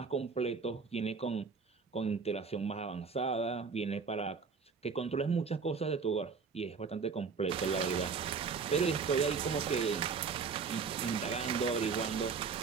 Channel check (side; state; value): left; quieter; 5.3 dB